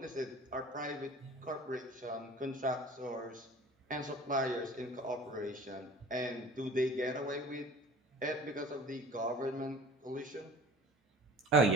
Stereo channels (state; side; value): normal; both; correlation 0.44